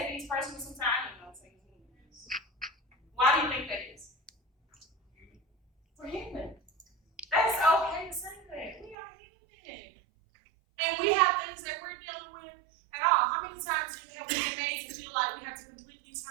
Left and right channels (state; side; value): drops out; left; at 9.0 s